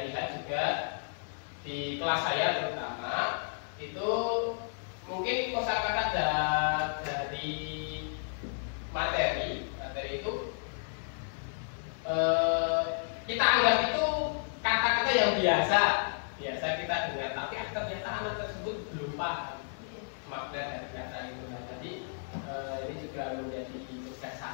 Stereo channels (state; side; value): silent; right; 56 dB below the other